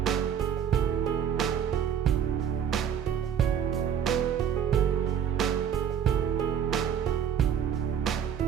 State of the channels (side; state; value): left; quieter; 8.5 dB